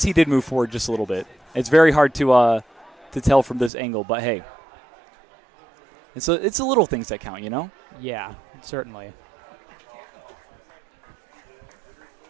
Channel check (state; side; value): drops out; left; at 3.7 s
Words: he did move forward just a little bit. It's very hard to tell from this angle, but hey, it's the little things that count, you know? Yeah, certainly.